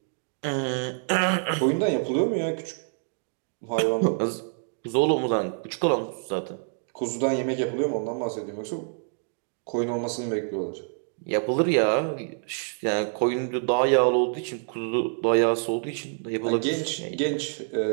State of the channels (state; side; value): silent; left; 60 dB below the other